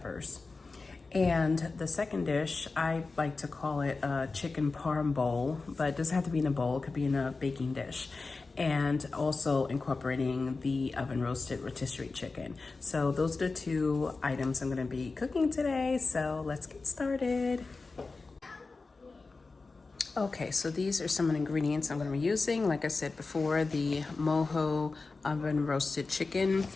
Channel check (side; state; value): right; quieter; 3.9 dB